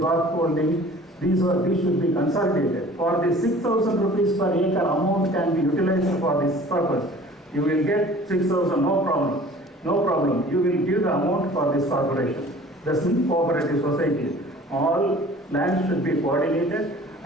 holding, these should be consolidated. For the 6,000 rupees per acre amount can be utilized for this purpose. You will get 6,000, no problem. No problem. You will give the amount for this corporation. That's in cooperative society. All land should be coordinated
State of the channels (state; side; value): normal; both; correlation 0.47